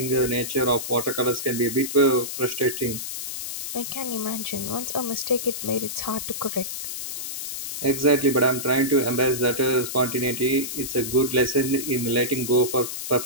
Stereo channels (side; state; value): left; noise; hiss, 6 dB below the sound